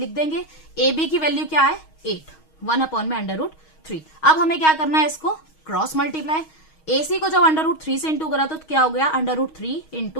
देंगे। AB की वैल्यू क्या है 8, 1 अपॉन में √3। अब हमें क्या करना है, इसको क्रॉस मल्टीप्लाई। AC को जब √3 से इंटू करा तो क्या हो गया √3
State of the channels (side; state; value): right; late; 6.3 ms